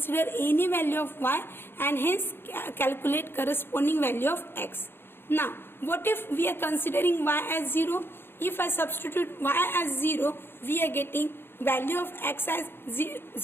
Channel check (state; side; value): late; right; 0.11 ms